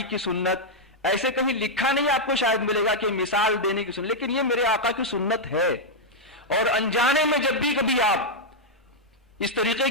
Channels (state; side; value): normal; both; correlation -0.04